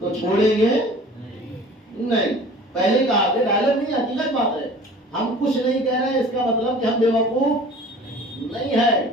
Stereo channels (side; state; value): both; normal; correlation 0.45